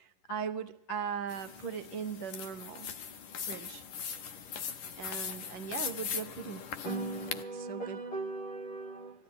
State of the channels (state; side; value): late; right; 11 ms